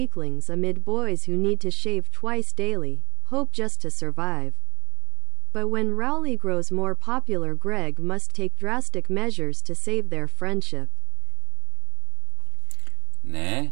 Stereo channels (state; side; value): quieter; left; 23.7 dB